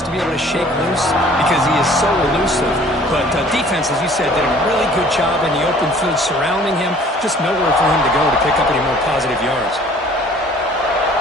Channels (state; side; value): normal; both; correlation 0.53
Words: to be able to shake loose because he is so elusive. But defense, as you said, did a really good job in the open field surrounding him. Just nowhere for him to go to pick up any more positive yards.